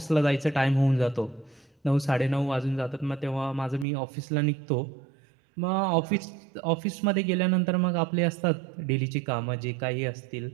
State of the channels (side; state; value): left; drops out; at 3.9 s